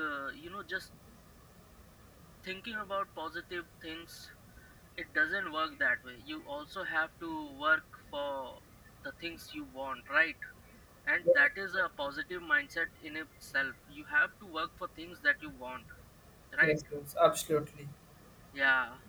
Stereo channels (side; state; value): both; identical; correlation 1.00